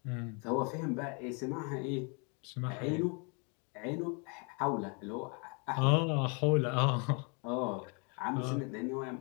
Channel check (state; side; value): quieter; right; 34.9 dB